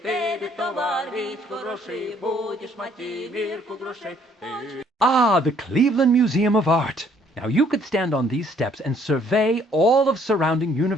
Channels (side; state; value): both; normal; correlation 0.63